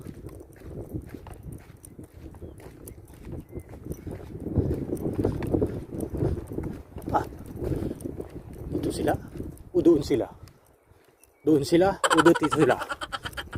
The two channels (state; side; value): identical; both; correlation 1.00